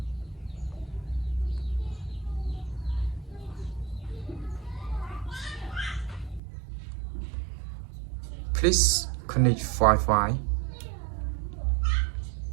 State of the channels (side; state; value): left; drops out; at 6.4 s